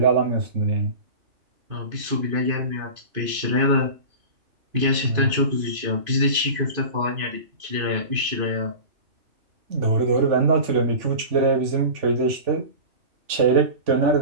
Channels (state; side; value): late; left; 2.5 ms